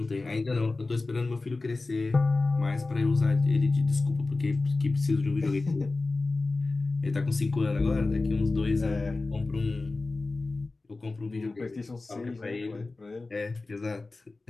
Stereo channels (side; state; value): right; quieter; 3.4 dB